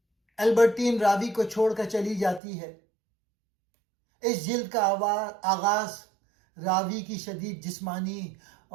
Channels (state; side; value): drops out; left; at 2.4 s